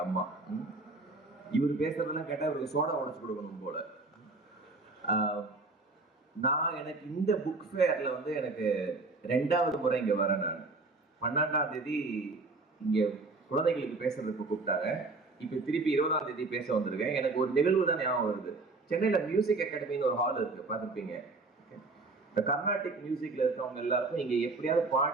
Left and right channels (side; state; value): left; quieter; 3.5 dB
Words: அம்மா. இவர் பேசுறதெல்லாம் கேட்டா இவருக்கு சோடா உடைச்சு கொடுக்கணும் போல. நான் எனக்கு இந்த புக் ஃபேர்ல வந்து எனக்கு 2வது முறை இங்க வரேன். நான் 12ஆம் தேதி இங்க குழந்தைகளுக்கு பேசுறதுக்கு கூப்பிட்டாங்க. இப்ப திருப்பி 20ஆம் தேதி பேச வந்திருக்கேன். எனக்கு ஒரு நிகழ்வு தான் ஞாபகம் வருது. சென்னையில மியூசிக் அகாடமின்னு ஒரு ஹால் இருக்கு, பார்த்துருப்பீங்க. இந்த கர்நாடிக் மியூசிக்ல இருக்கவங்க எல்லாருக்கும் இங்க எப்படியாவது